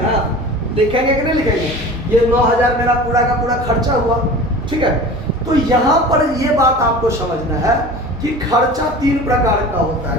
लिखेंगे कि नहीं लिखेंगे, ये 9000 मेरा पूरा का पूरा खर्चा हुआ। ठीक है, तो यहाँ पर ये बात आपको समझना है कि खर्चा 3 प्रकार का होता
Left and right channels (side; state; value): both; normal; correlation 0.38